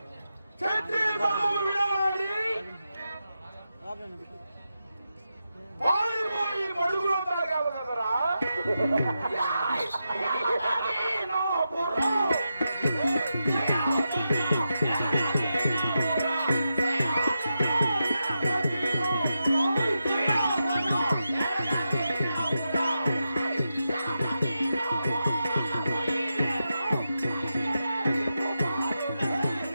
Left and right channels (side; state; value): both; inverted; correlation -0.88